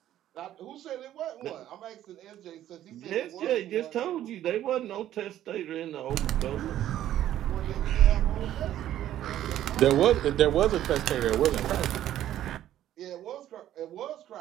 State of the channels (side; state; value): left; quieter; 12.3 dB